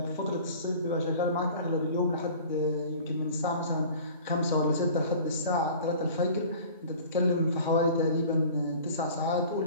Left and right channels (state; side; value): inverted; both; correlation -0.44